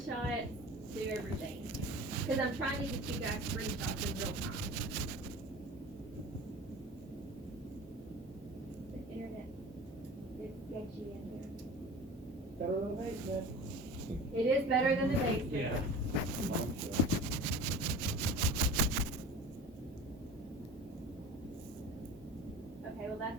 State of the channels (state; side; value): normal; both; correlation 0.38